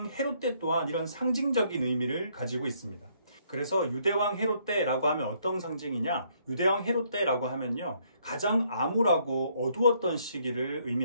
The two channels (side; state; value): both; inverted; correlation -0.69